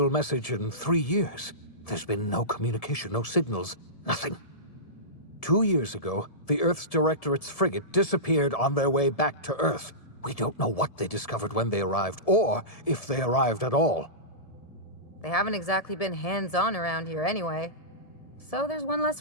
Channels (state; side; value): late; right; 1.7 ms